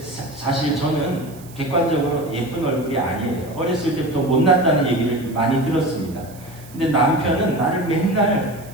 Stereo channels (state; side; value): noise; right; hiss, 22 dB below the sound